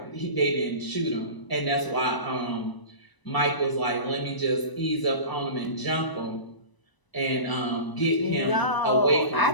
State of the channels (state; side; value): late; right; 1.0 ms